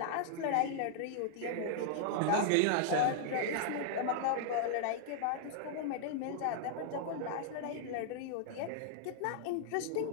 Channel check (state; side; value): different; both; correlation -0.01